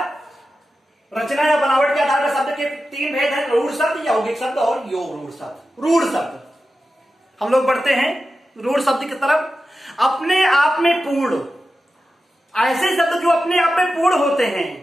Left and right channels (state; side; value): normal; both; correlation 0.92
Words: रचना या बनावट के आधार पर शब्द के तीन भेद हैं, रूढ़ शब्द, यौगिक शब्द और योग रूढ़ शब्द। रूढ़ शब्द, हम लोग बढ़ते हैं रूढ़ शब्द की तरफ। अपने आप में पूर्ण, ऐसे शब्द जो अपने आप में पूर्ण होते